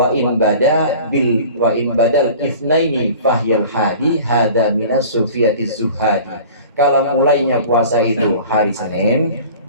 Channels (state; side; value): inverted; both; correlation -0.43